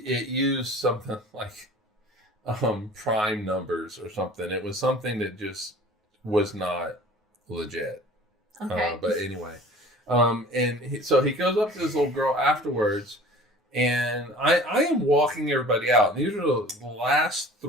used something like prime numbers or something. It was something that just was not legit. Okay. But anyway, so he goes up to this little girl afterwards, and I am walking everybody out. These are the last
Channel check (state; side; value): normal; both; correlation 0.45